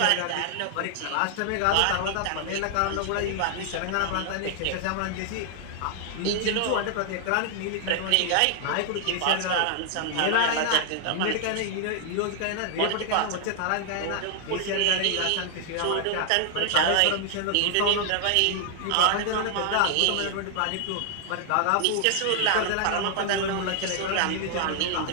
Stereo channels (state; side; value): different; both; correlation 0.00